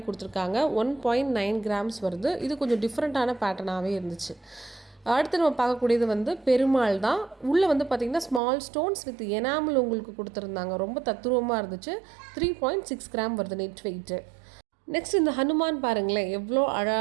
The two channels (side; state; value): left; drops out; at 8.4 s